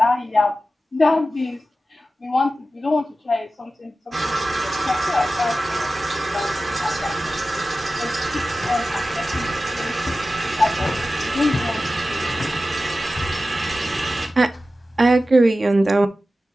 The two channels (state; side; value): normal; both; correlation 0.94